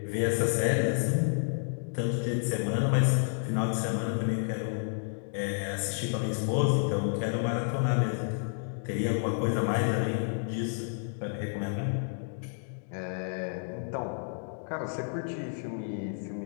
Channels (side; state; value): right; silent; digital silence